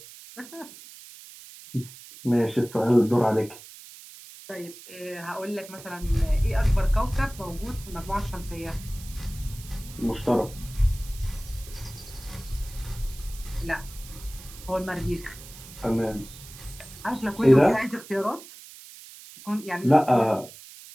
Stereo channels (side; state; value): right; noise; hiss, 17 dB below the sound